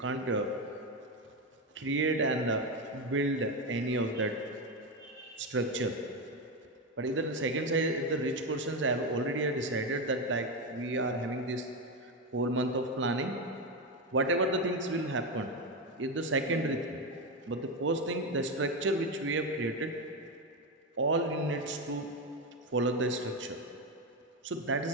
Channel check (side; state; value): both; normal; correlation 0.12